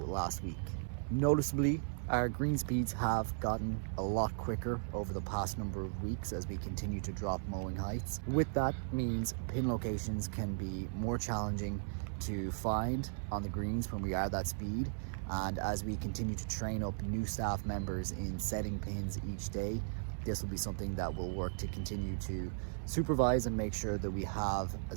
last week. Noticeably, our green speeds have gotten a lot quicker over the past number of weeks as we continue to drop mowing heights. With that means pin locations can be more challenging to find on the greens when we are that speed, and as we continue to train up new staff members in setting pins each day, this will be something that we'll work to continue to supervise and make sure that we have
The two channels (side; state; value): left; silent; digital silence